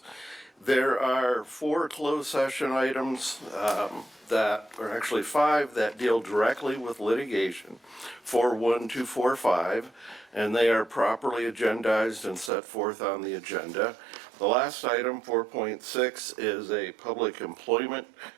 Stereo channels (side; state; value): left; drops out; at 12.5 s